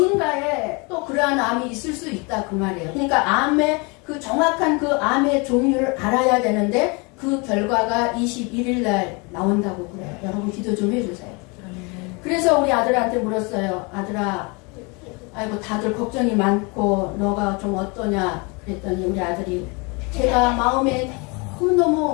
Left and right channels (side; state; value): right; quieter; 29.9 dB